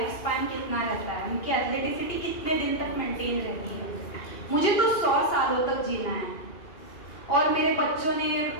स्पैन कितना रहता है, उनकी एथलेटिसिटी कितने दिन तक मेंटेन रहती है? मुझे तो 100 सालों तक जीना है और मेरे बच्चों ने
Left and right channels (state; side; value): late; right; 2.9 ms